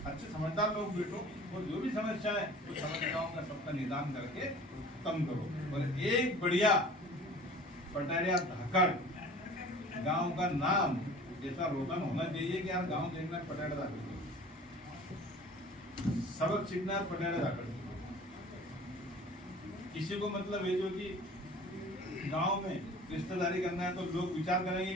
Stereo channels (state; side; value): normal; both; correlation 0.44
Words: अच्छे समझदार लोग बैठो और जो भी समस्या है उस समस्याओं का सबका निदान करके खत्म करो। और एक बढ़िया पटारिया धाकड़ गांव का नाम ऐसा रोशन होना चाहिए कि यार गांव देखना पटारिया धाकड़, सबक सीखना पटारिया धाकड़। किसी को मतलब है जो कि गांव में रिश्तेदारी करना है तो लोग विचार करेंगे